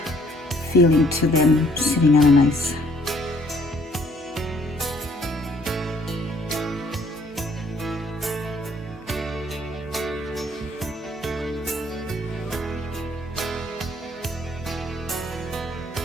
feeling to them sitting on a nice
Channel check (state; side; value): normal; both; correlation 0.62